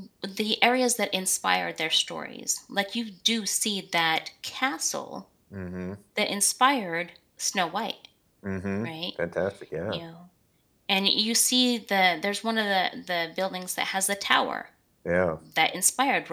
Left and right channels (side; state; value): both; identical; correlation 1.00